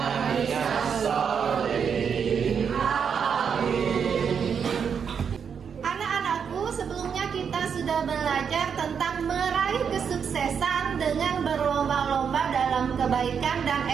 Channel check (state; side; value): quieter; left; 6.9 dB